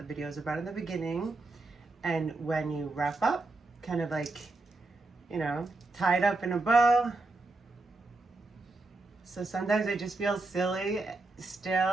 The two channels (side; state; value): left; quieter; 3.2 dB